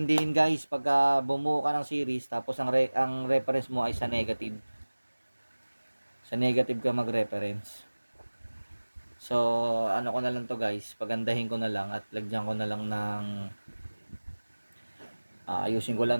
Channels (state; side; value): inverted; both; correlation -1.00